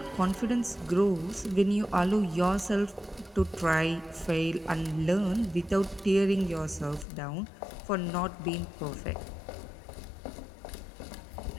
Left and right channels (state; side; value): drops out; right; at 7.1 s